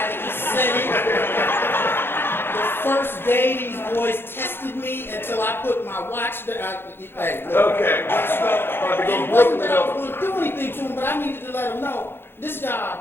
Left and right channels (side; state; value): right; late; 0.11 ms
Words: he said it. The first day, these boys tested me until I put my watch there. Hey, Okay. It wasn't that I was going to do anything to them, but I needed to let them know, this